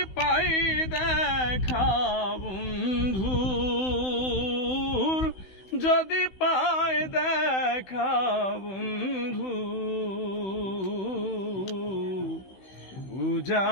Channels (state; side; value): late; right; 16 ms